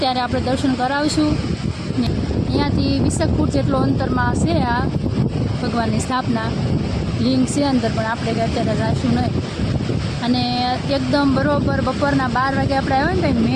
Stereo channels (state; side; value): identical; both; correlation 1.00